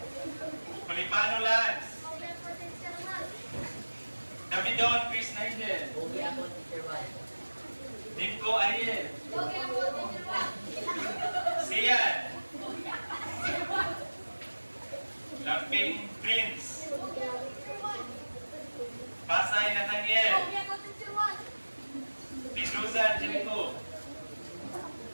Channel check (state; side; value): inverted; both; correlation -1.00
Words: Malipano Lance. Davidon Chris Nigel. Okay ako, Teacher White. Nimco Ariel. Okay ako, Teacher. Sian. Lamping Prince. Pasay Nathaniel. Okay ako, Teacher. Pedroza Angelico.